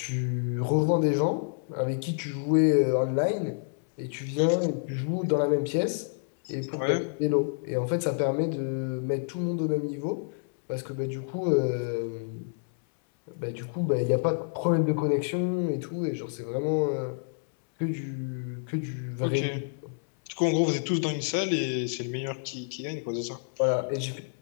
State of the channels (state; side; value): silent; right; 59 dB below the other